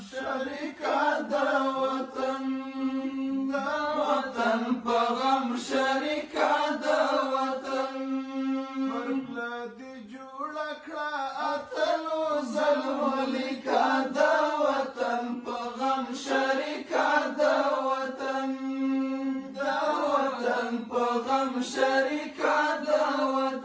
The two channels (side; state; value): both; identical; correlation 1.00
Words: شریکه د وطن په غم شریکه د وطن پرپله دې جوړه کړه اتلو ظلمو لیکه د وطن په غم شریکه د وطن په غم شریکه د